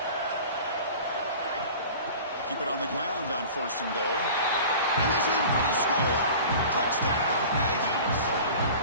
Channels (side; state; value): both; inverted; correlation -0.39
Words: Keep it on the ground on first and goal. And he's in for the score. Touchdown, Aggies.